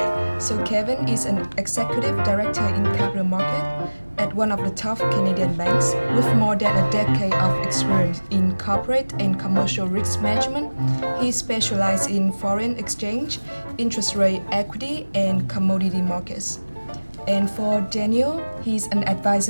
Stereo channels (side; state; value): both; inverted; correlation -1.00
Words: So Kevin is an executive director in capital market at one of the top Canadian banks with more than a decade of experience in corporate and commercial risk management. He specializes in foreign exchange, interest rate equity, and commodity markets. And for Daniel, he's an